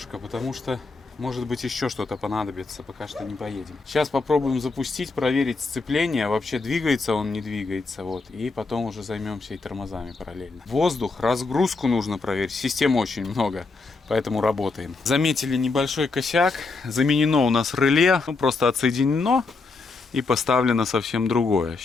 потому что может быть еще что-то понадобится, пока что не поедем. Сейчас попробуем запустить, проверить сцепление, вообще двигается он, не двигается, вот, и потом уже займемся и тормозами параллельно. Воздух, разгрузку нужно проверить, систем очень много, поэтому работаем. Заметили небольшой косяк, заменено у нас реле, ну просто отсоединено и поставлено совсем другое.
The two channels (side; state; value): right; quieter; 4.0 dB